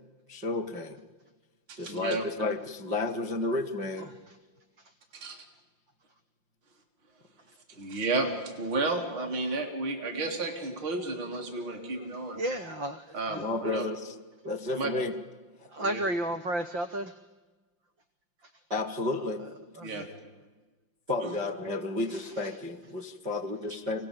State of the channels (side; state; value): left; late; 5.7 ms